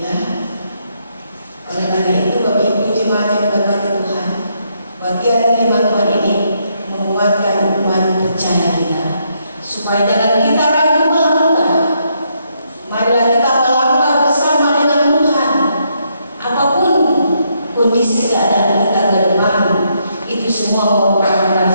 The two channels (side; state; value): both; inverted; correlation -0.76